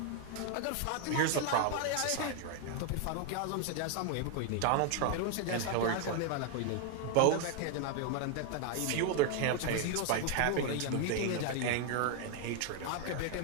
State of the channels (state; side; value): different; both; correlation 0.00